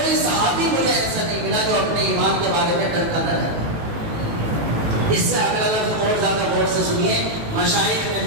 صحابی مجھے ایسا نہیں ملا جو اپنے ایمان کے بارے میں ڈرتا نہ رہتا۔ اس سے اگلا لفظ اور زیادہ غور سے سنیے، مشائخ نے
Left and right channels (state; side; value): late; left; 19 ms